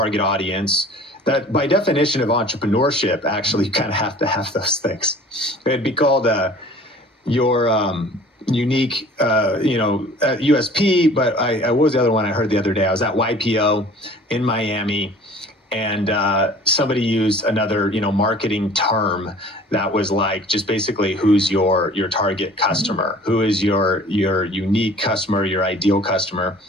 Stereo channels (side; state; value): both; normal; correlation 0.48